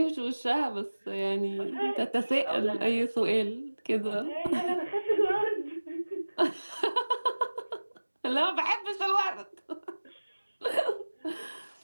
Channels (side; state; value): both; inverted; correlation -1.00